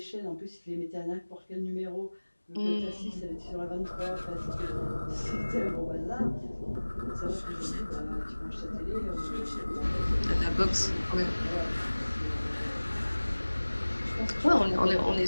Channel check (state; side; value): inverted; both; correlation -1.00